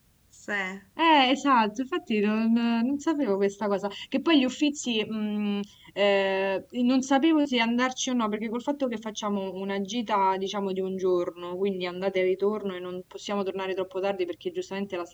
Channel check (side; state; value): both; identical; correlation 1.00